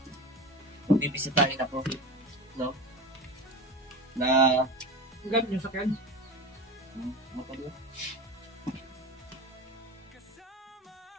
bibisitahin ako. No? Na Ang gamit nyo sakyan. motor.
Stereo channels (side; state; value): both; normal; correlation 0.28